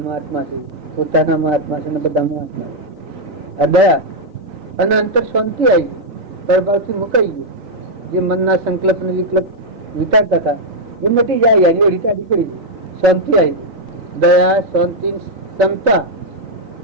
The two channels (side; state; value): left; late; 3.9 ms